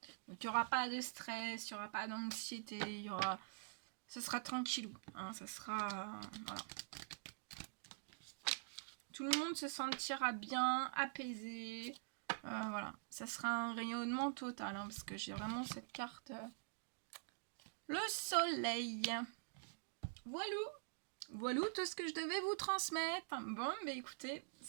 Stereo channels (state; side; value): silent; left; digital silence